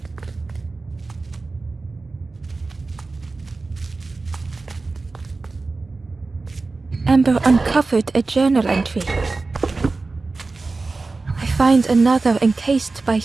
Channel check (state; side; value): quieter; left; 3.7 dB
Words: Ember uncovered a journal entry. I find another encased by